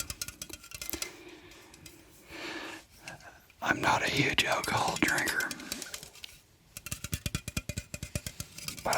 I'm not a huge alcohol drinker, but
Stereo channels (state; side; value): identical; both; correlation 1.00